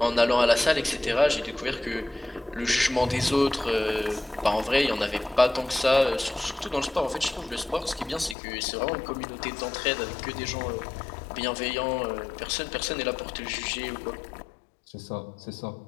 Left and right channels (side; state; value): right; drops out; at 8.3 s